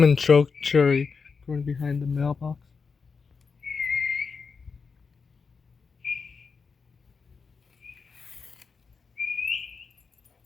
choke cherry growing behind the mailbox.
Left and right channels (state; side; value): quieter; right; 5.2 dB